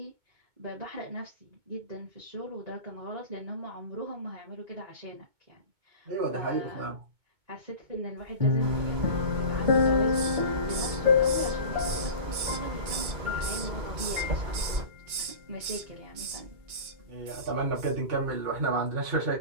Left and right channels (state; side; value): late; left; 2.2 ms